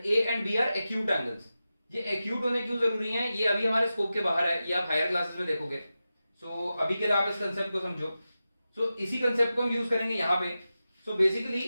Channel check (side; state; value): both; inverted; correlation -0.93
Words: a and b are acute angles. ये एक्यूट होने क्यों जरूरी है, ये अभी हमारे स्कोप के बाहर है, ये आप हायर क्लासेस में देखोगे। सो अभी के लिए आप इस कंसेप्ट को समझो। सो इसी कंसेप्ट को हम यूज करेंगे यहाँ पे। सो बेसिकली